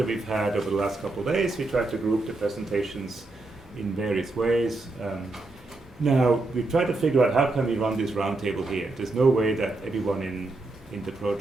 we've had over the last couple of days. We tried to group the presentations in various ways. Now, we tried to figure out how can we run this roundtable here. There's no way that everyone in the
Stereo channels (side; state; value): left; quieter; 3.1 dB